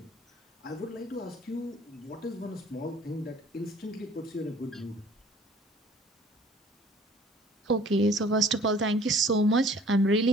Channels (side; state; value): both; normal; correlation 0.53